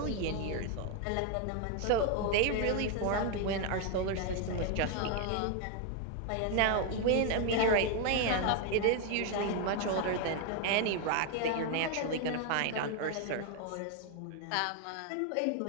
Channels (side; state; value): both; different; correlation 0.01